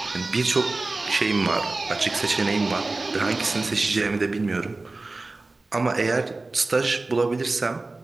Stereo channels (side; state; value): left; quieter; 3.3 dB